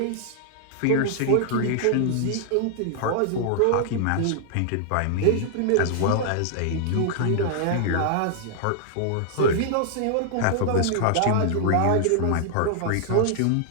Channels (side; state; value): both; different; correlation -0.01